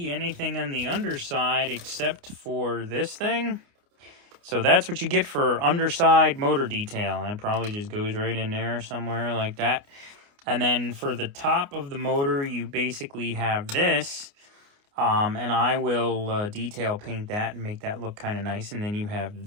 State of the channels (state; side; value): late; left; 29 ms